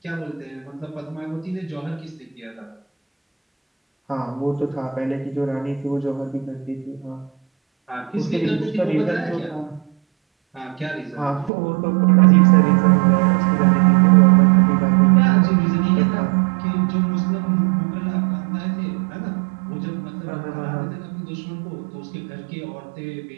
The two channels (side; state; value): left; drops out; at 11.5 s